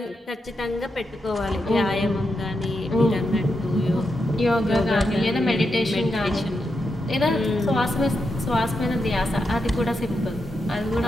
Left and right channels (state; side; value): normal; both; correlation 0.85